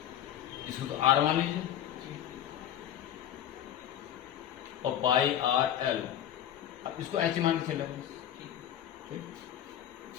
इसको तो आर मान लीजिए और पाई आर एल, अब इसको एच मान के चले। ठीक,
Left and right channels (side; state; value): right; quieter; 10.9 dB